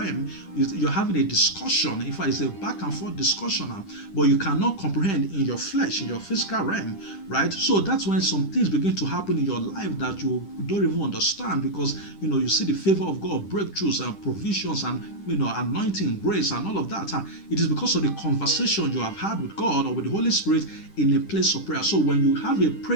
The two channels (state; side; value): late; right; 10 ms